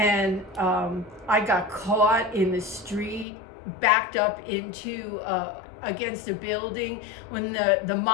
I got caught in the street, backed up into against a building when the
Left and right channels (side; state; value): right; drops out; at 3.2 s